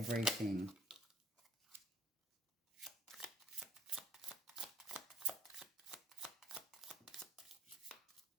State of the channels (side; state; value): both; normal; correlation 0.60